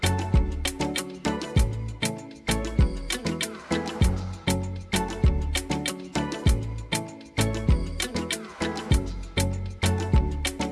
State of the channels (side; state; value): both; identical; correlation 1.00